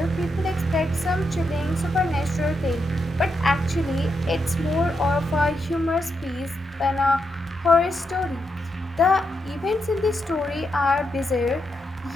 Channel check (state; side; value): normal; both; correlation 0.83